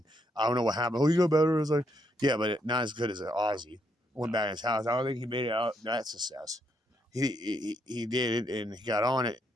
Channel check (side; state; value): both; normal; correlation 0.76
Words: I don't know what happened. Oh, he got better. I was like, yeah, but not as good as Ozzy. Went back to his house. I don't think he made it out that success. He did it, and he got on it,